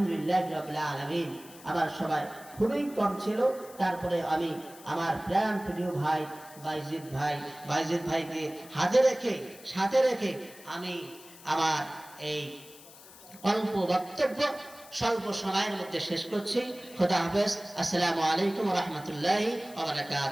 রাব্বিল আলামিন। আমার সবাই খুবই কম ছিল, তারপরে আমি আমার প্রাণ প্রিয় ভাই বাইজিদ ভাইকে সাথে রেখে আমি আমার এই অল্প বক্তব্য স্বল্প সময়ের মধ্যে শেষ করছি। খোদা হাফেজ। আসসালামু আলাইকুম ওয়া রাহমাতুল্লাহি ওয়া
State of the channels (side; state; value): left; noise; hiss, 20 dB below the sound